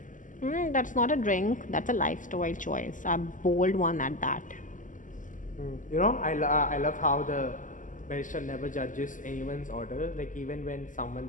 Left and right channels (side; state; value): right; late; 0.38 ms